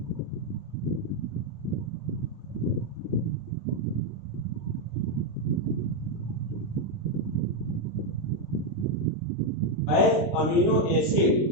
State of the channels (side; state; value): right; late; 20 ms